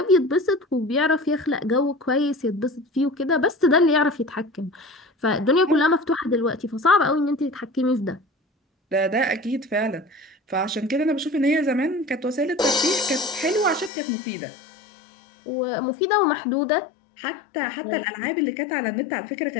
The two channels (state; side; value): drops out; right; at 13.9 s